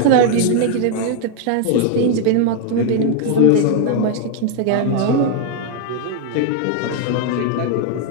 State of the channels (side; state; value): both; different; correlation 0.00